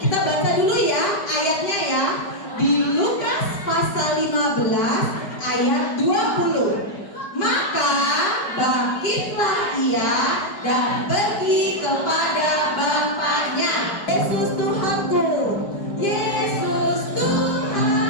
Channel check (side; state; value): right; late; 5.0 ms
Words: baca dulu ya ayatnya ya. Di Lukas pasal 15 ayat 20. Maka bangkitlah ia dan pergi kepada Bapaknya. Yesus Tuhanku, Yesus